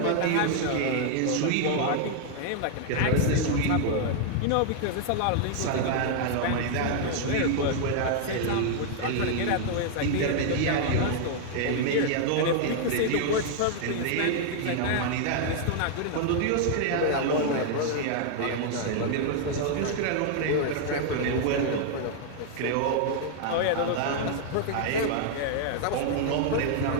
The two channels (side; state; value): both; different; correlation 0.00